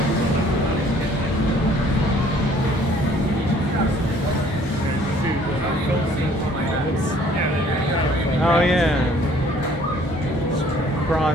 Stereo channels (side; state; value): both; normal; correlation 0.58